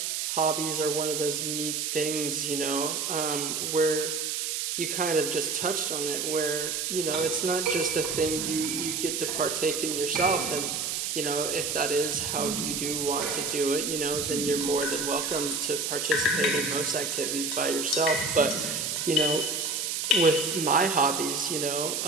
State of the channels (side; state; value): right; noise; hiss, 1 dB below the sound